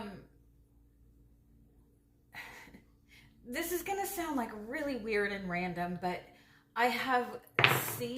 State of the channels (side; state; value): both; identical; correlation 1.00